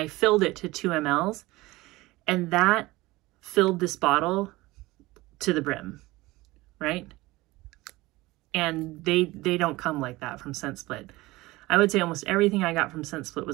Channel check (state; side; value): quieter; left; 20.1 dB